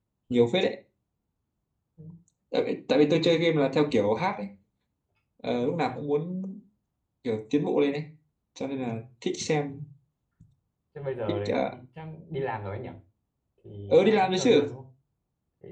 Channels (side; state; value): both; identical; correlation 1.00